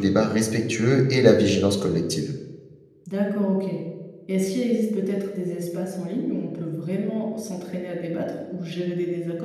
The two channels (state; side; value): identical; both; correlation 1.00